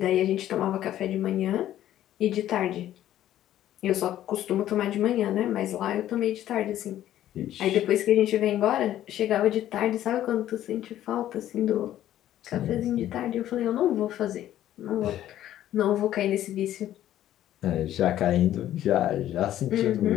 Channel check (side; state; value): right; quieter; 12.5 dB